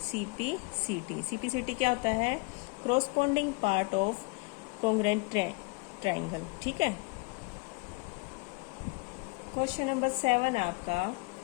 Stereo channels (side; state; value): right; quieter; 29.5 dB